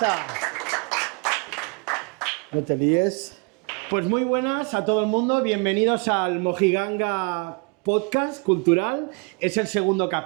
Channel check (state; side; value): quieter; left; 34.9 dB